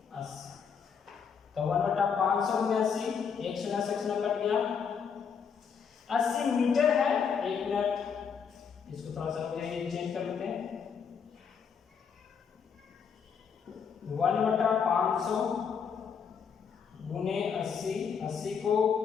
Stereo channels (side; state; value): right; quieter; 6.6 dB